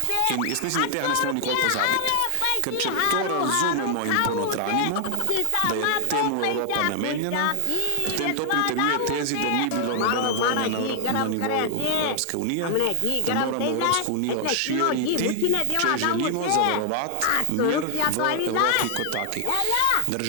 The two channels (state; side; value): different; both; correlation 0.00